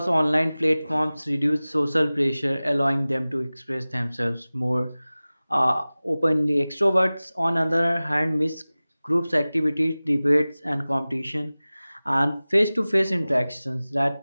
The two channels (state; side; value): inverted; both; correlation -0.98